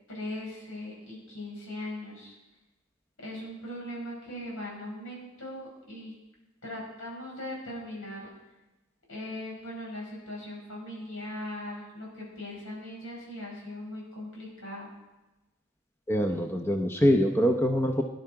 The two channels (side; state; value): both; normal; correlation 0.79